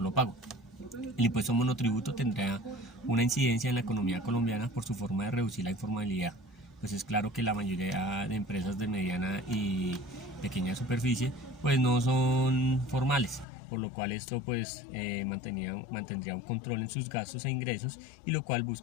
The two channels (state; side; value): drops out; right; at 13.5 s